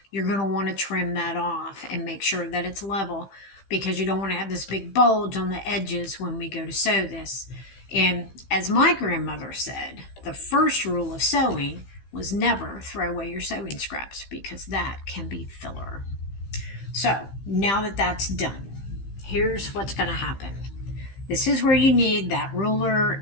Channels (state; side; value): late; right; 15 ms